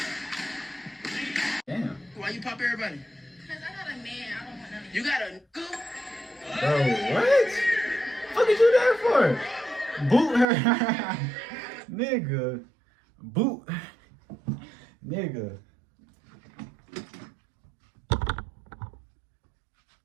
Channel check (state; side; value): drops out; left; at 10.5 s